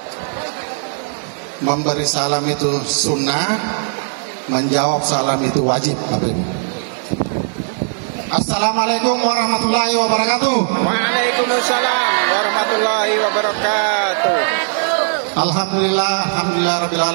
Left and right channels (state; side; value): silent; left; digital silence